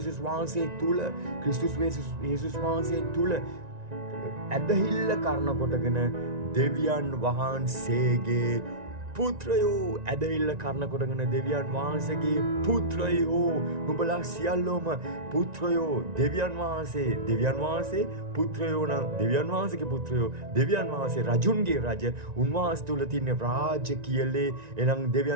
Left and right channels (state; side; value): late; left; 1.9 ms